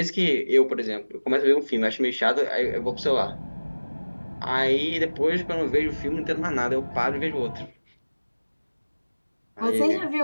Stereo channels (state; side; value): inverted; both; correlation -1.00